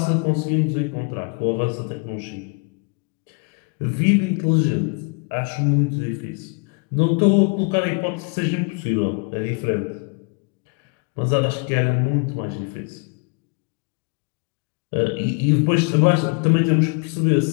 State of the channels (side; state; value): right; quieter; 35.1 dB